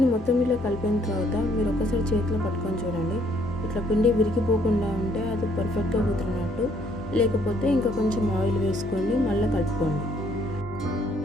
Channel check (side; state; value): both; normal; correlation 0.66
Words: మొత్తం ఇలా కలిపిన తర్వాత మీరు ఒకసారి చేతిలో పట్టుకొని చూడండి. ఇట్లా పిండి విరిగిపోకుండా ఉంటే అది పర్ఫెక్ట్గా కుదిరినట్టు. లేకపోతే ఇంకా కొంచెం ఆయిల్ వేసుకొని మళ్ళీ కలుపుకోండి.